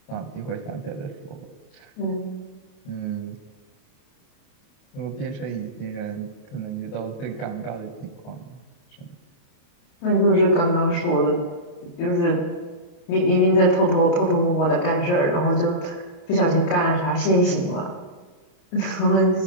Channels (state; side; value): late; right; 28 ms